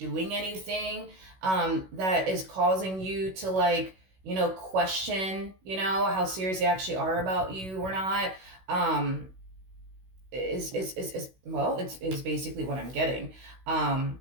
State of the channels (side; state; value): left; late; 16 ms